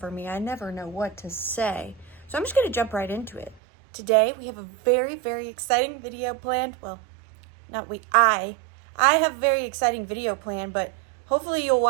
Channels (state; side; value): drops out; left; at 3.6 s